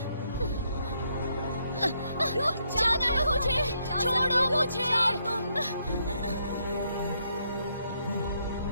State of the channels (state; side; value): inverted; both; correlation -0.75